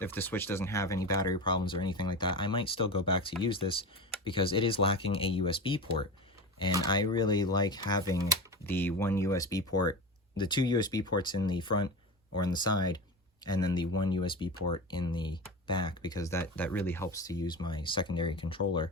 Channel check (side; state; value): both; normal; correlation 0.26